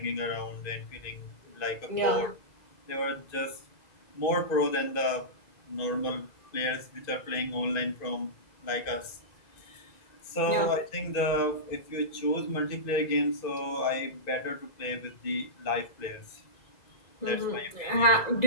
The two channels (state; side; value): late; right; 2.5 ms